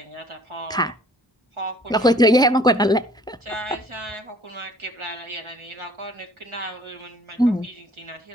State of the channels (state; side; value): normal; both; correlation 0.55